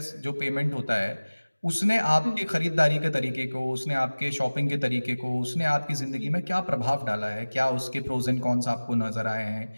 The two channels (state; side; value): inverted; both; correlation -1.00